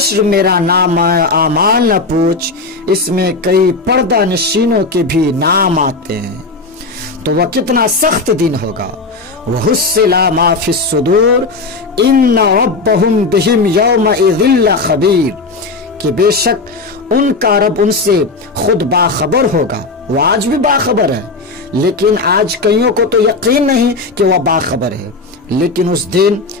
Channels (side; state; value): right; quieter; 3.6 dB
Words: मेरा नाम आमाल न पूछ, इसमें कई पर्दा नशीनों के भी नाम आते हैं। तो वह कितना सख्त दिन होगा। वह हुस्सिला मा फिस सुदूर इन्न रब्बहुम बिहिम यौमइज़िल खबीर, कि बेशक उनका रब उनसे खुद बाखबर होगा। वह आज भी बाखबर है, लेकिन आज कईयों को तो यकीन नहीं कि वह बाखबर है। लेकिन उस दिन